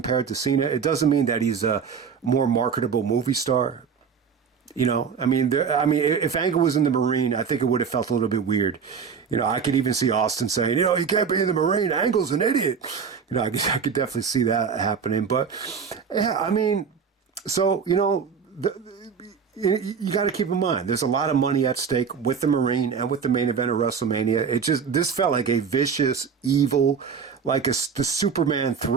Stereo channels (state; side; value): quieter; left; 6.4 dB